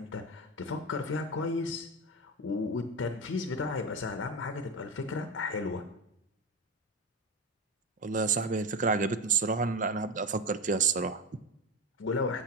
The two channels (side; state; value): both; normal; correlation 0.17